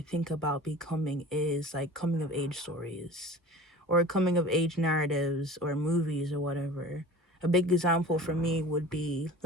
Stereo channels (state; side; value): normal; both; correlation 0.40